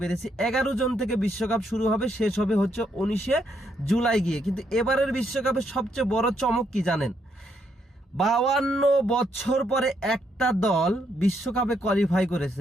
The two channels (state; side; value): normal; both; correlation 0.75